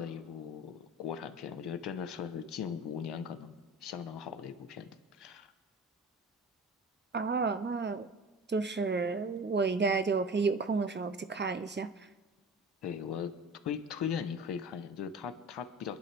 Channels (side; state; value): both; normal; correlation 0.37